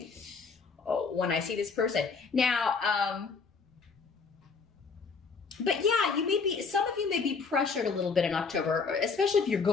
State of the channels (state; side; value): quieter; right; 5.0 dB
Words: I see this person. Now, but yeah, you may be, some of you may be pressured a little bit in October, especially if you're